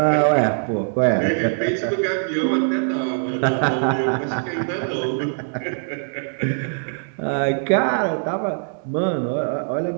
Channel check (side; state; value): left; silent; digital silence